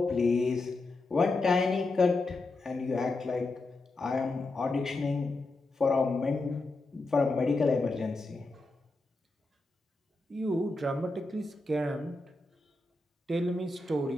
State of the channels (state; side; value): quieter; right; 3.1 dB